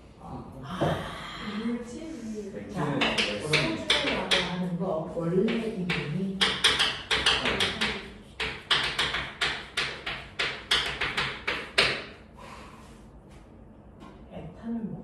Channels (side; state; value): both; identical; correlation 1.00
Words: 물질 자, 소주라고 하는 거 원래 이름이